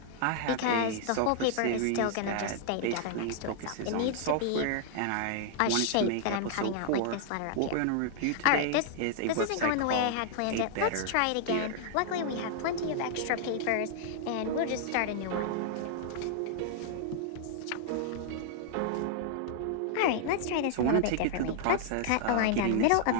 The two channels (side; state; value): both; different; correlation -0.01